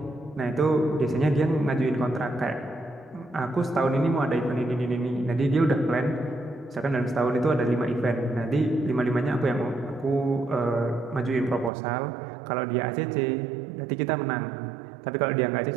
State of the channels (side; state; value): left; drops out; at 11.7 s